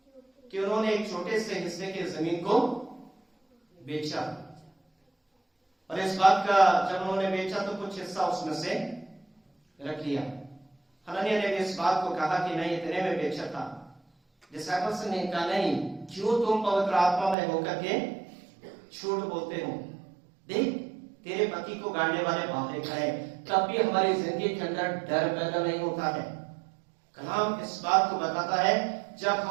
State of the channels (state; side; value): drops out; left; at 17.4 s